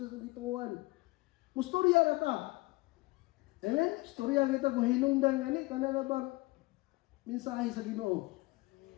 gituan. Mustorya ra ta. Amen? Istorya kita kung hinungdan ani kana na bang mensahe sa Ginoo.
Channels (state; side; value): quieter; right; 22.6 dB